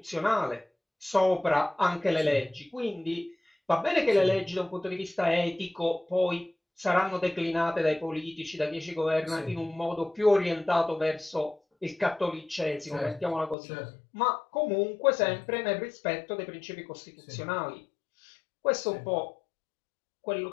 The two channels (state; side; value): drops out; right; at 13.6 s